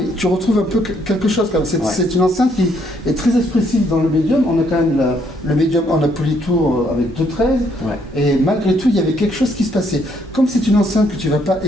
tu retrouves un peu quelque chose comme c'est une enceinte qui est très expressive dans le médium. On a quand même le médium en Polytour avec 2.13 et malgré tout il y avait quelque chose qui se passait. Comme c'est une enceinte que tu vas pas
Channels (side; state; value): both; normal; correlation 0.70